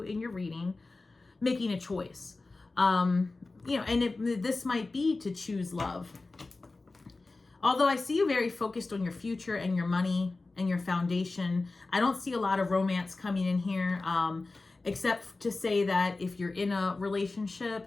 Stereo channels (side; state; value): right; quieter; 3.4 dB